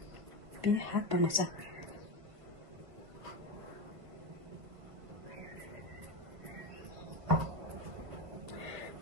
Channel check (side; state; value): left; late; 1.5 ms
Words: بین حد با مزه